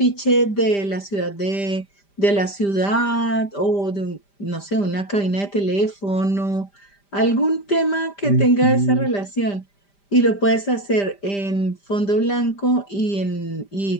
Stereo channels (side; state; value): right; late; 5.0 ms